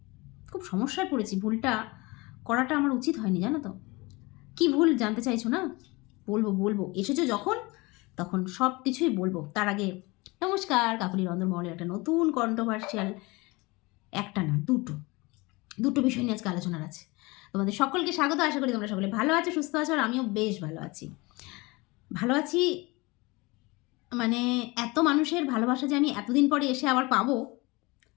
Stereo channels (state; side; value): quieter; right; 24.2 dB